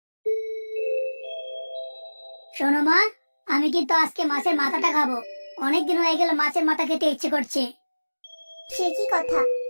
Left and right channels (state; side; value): inverted; both; correlation -1.00